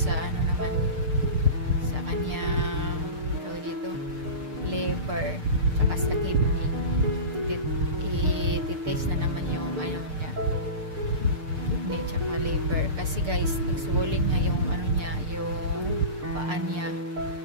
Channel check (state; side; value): late; left; 6.7 ms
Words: ano naman, sa kanyang tawag dito, liver, tsaka sa kidney. I-test na naman yung ano niya, kidney tsaka liver. Kasi guys, nag-swollen nga yung ano niya, yung paa niya.